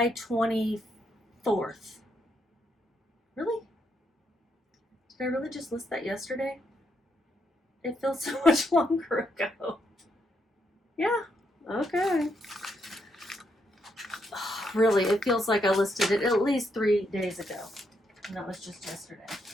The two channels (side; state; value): both; normal; correlation 0.77